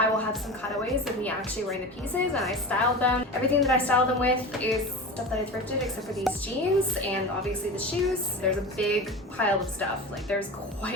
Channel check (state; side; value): normal; both; correlation 0.30